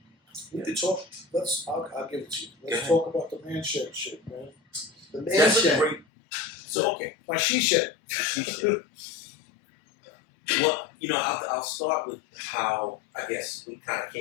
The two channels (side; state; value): right; drops out; at 6.1 s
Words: We could talk. I'll give it to you. Go Let's ahead. talk about the man shed shit, man. The man That's a shed. great. So okay. My she shed. Well, I'll start with how I guess we kind of